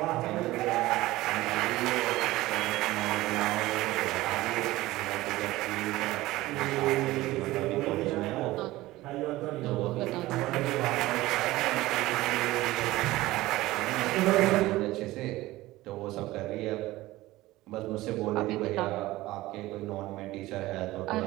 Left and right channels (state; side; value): quieter; left; 17.8 dB